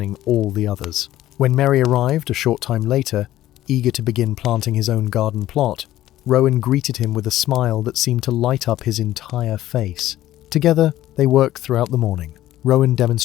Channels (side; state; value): right; quieter; 14.1 dB